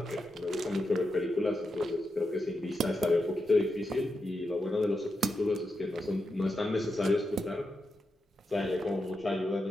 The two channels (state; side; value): normal; both; correlation 0.87